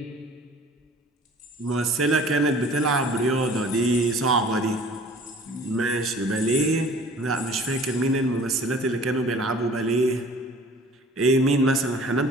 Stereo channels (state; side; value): normal; both; correlation 0.48